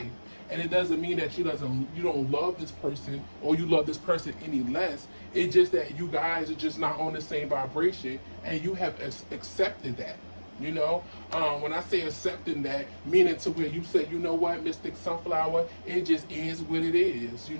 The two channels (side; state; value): both; inverted; correlation -1.00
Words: And it doesn't mean that you don't love this person or you love this person any less. It's just that you guys are just not on the same vibration, and you have accepted that. You know, when I say accepting that, meaning to where you say, you know what, Mystic Sunflower, it just is what it is, you